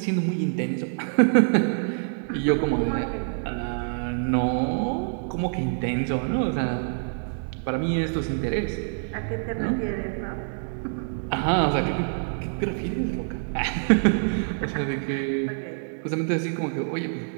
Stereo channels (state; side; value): silent; left; digital silence